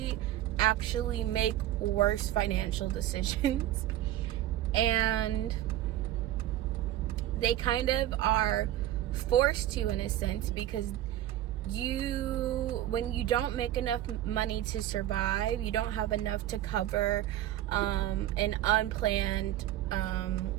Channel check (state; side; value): quieter; left; 13.3 dB